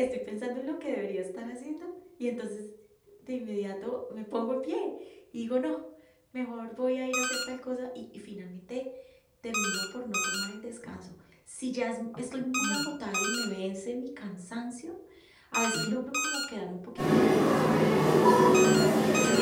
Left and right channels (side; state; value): both; identical; correlation 1.00